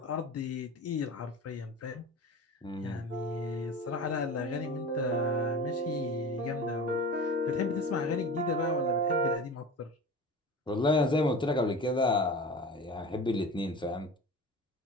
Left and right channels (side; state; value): both; normal; correlation 0.34